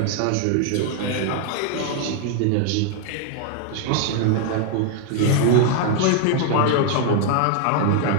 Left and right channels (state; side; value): different; both; correlation 0.00